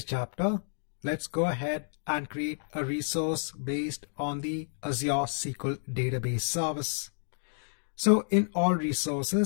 chapter, let's go ahead and create a resource based on the Azure SQL database service. So in all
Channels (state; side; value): silent; right; digital silence